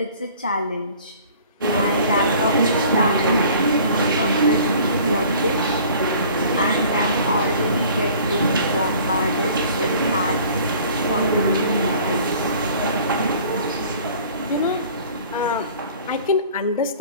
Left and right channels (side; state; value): both; inverted; correlation -0.50